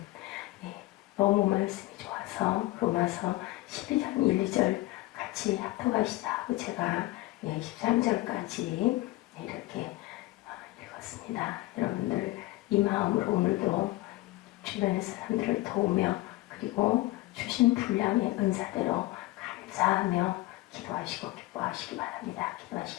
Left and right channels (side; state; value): right; quieter; 18.9 dB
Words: 너무 말씀이 좋아서 로마서 12장 1, 2절 같이 합독하시다 하고 제가 13절까지 이렇게 읽었습니다. 여러분들 이 마음으로 오늘도 주변의 사람들을 도우며 그리고 주신 분량의 은사대로 감사하며 기도하시고 기뻐하시기 바랍니다.